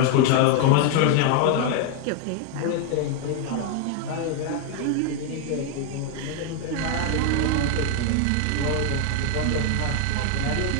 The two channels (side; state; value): both; different; correlation 0.00